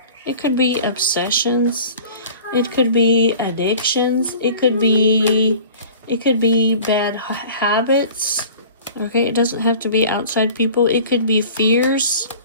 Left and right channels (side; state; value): both; inverted; correlation -0.44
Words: It could be obsessions. It could be addictions. It could be bad habits. Okay, it doesn't have to be outside people. It could be fears.